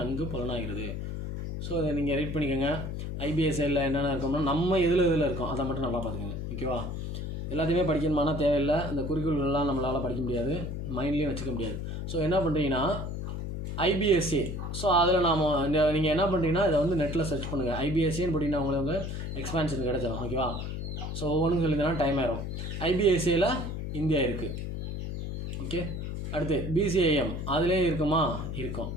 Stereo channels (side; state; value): left; noise; hum, 5 dB below the sound